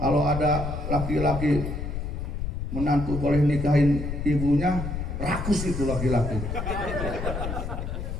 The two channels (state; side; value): noise; left; rumble, 4 dB below the sound